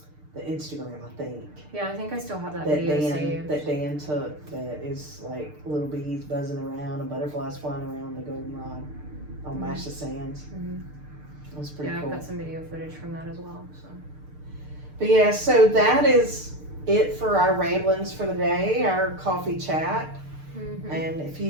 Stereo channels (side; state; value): left; late; 6.6 ms